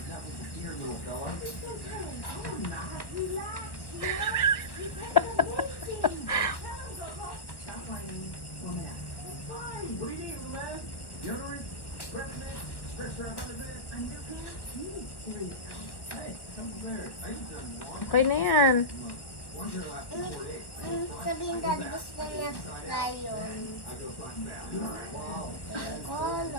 Okay na yan. Sabihin daddy gusto niya lion.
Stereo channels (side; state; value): right; late; 1.1 ms